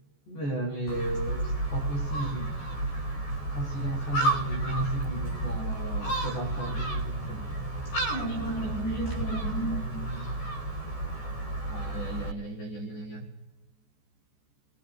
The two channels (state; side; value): late; right; 14 ms